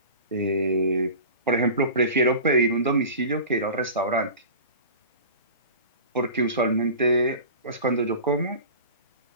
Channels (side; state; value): both; inverted; correlation -0.37